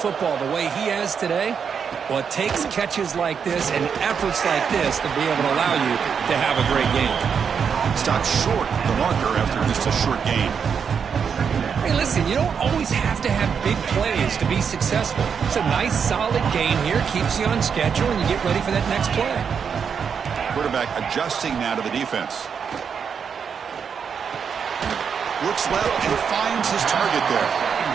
the way he has today. Well, it takes catches like this and efforts like this to be able to allow you to have a great game. Stopped short the marker after just a short game. Hey, listen, you don't always have to have big plays to be successful. It's a nice, solid game here. Keeps you on schedule, and you get ready for that next play. Quarterback adjusting now to the defense. Looks left and finds his target there.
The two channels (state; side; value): quieter; left; 6.8 dB